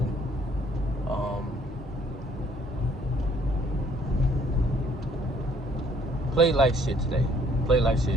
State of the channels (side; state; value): both; normal; correlation 0.62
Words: Played like shit today. Played like